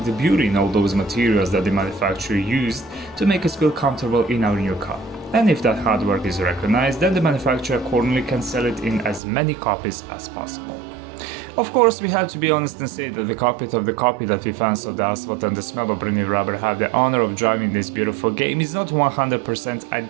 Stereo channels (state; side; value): drops out; left; at 9.2 s